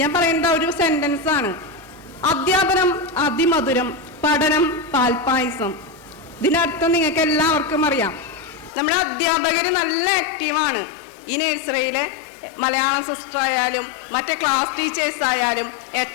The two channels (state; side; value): drops out; right; at 8.7 s